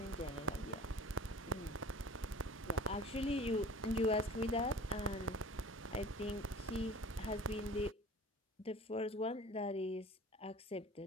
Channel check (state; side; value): normal; both; correlation 0.43